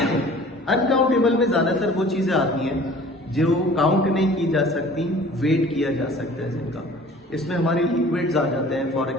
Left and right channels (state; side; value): normal; both; correlation 0.48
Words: uncountable में ज्यादातर वो चीजें आती हैं जो काउंट नहीं की जा सकती, वेट किया जा सकता है जिनका। इसमें हमारे लिक्विड्स आ जाते हैं, फॉर